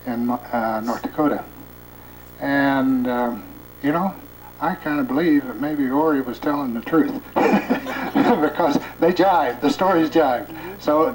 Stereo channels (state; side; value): identical; both; correlation 1.00